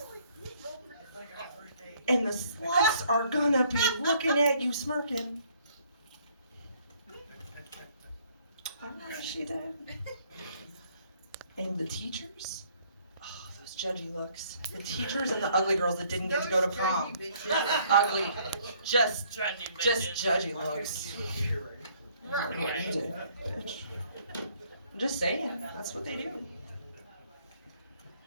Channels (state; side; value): inverted; both; correlation -0.63